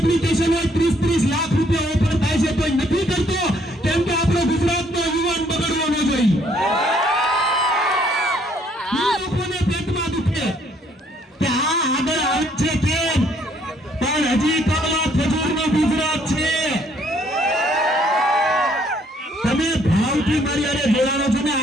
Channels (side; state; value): both; normal; correlation 0.65